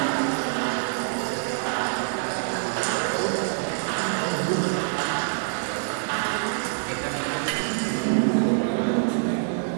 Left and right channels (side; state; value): left; silent; digital silence